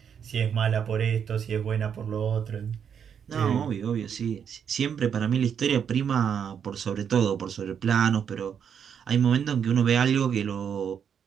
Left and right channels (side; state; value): left; quieter; 7.7 dB